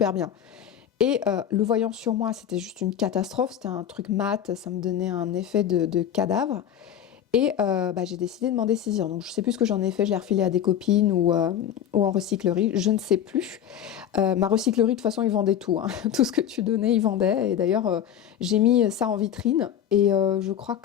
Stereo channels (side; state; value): right; quieter; 9.8 dB